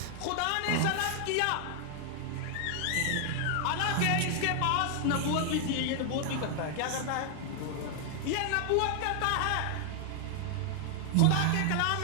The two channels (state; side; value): different; both; correlation 0.00